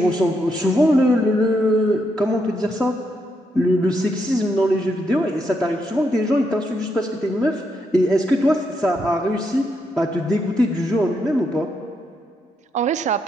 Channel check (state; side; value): normal; both; correlation 0.79